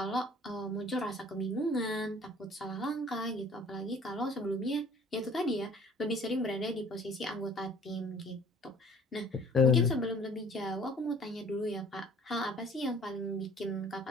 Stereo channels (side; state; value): both; normal; correlation 0.52